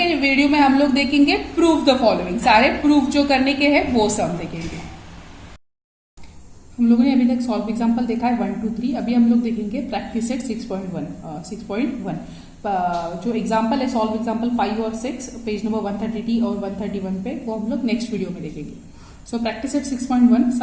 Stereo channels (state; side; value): identical; both; correlation 1.00